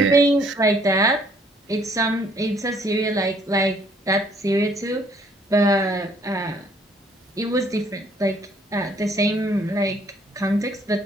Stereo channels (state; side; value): normal; both; correlation 0.63